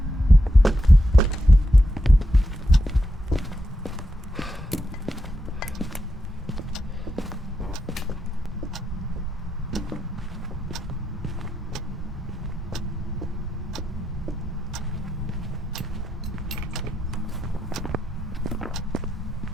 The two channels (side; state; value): both; normal; correlation 0.85